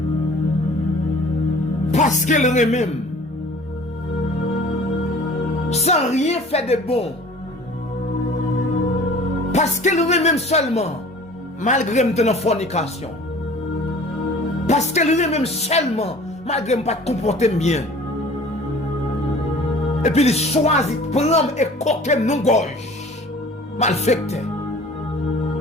parce qu'elle même, sans rien faire de bon, parce qu'elle même seulement, malgré une fornication, parce qu'elle même seulement, malgré ne pas comporter bien, et puis il choisit de prendre et coquer nos gorges, malfecté.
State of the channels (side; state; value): both; normal; correlation 0.47